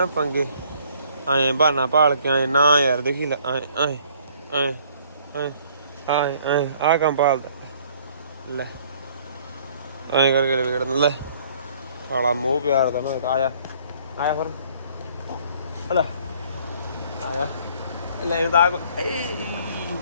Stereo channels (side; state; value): both; inverted; correlation -0.59